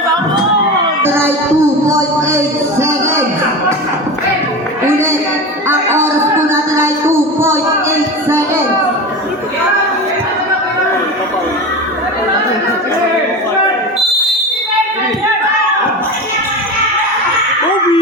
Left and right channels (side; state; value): both; normal; correlation 0.26